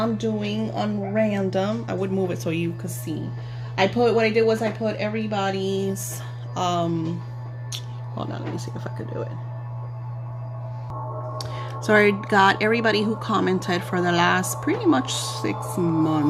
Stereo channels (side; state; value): both; identical; correlation 1.00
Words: I'm doing on random. I would move it so you could see. What I did was I put everybody's, hold on, let me see if I could do it. So I got everybody who commented for the last pretty much 6